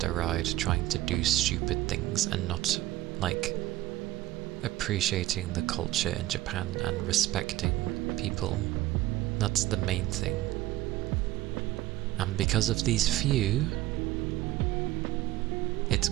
ride trying to do stupid things and not like appreciating the culture in Japan and respecting people. That's the main thing. And because of these few, it's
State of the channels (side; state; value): left; quieter; 15.8 dB